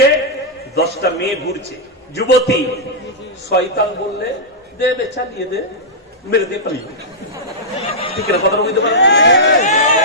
10টা মেয়ে ঘুরছে, যুবতী। শয়তান বললে দে বে, চালিয়ে দে, মেরে দে, পালিয়ে। ঠিক না? কথা বুঝতে পারেন?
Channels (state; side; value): normal; both; correlation -0.09